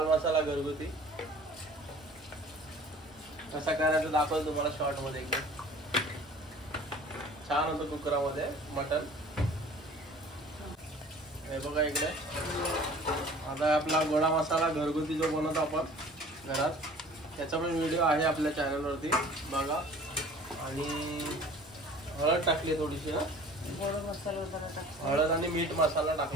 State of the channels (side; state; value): both; normal; correlation 0.48